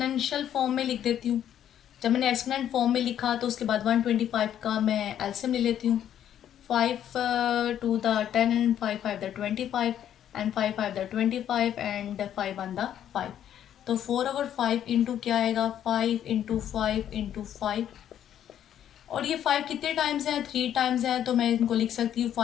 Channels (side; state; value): right; quieter; 10.4 dB